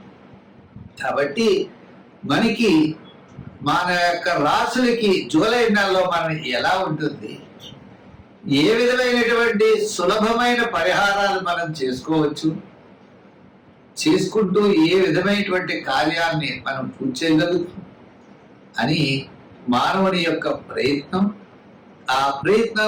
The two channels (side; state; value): both; identical; correlation 1.00